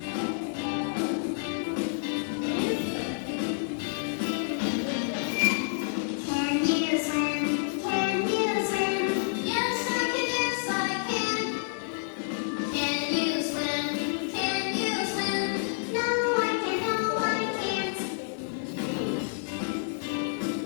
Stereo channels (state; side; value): silent; right; 59 dB below the other